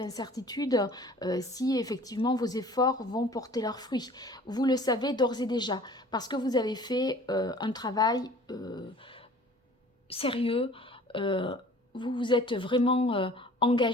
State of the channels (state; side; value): normal; both; correlation 0.48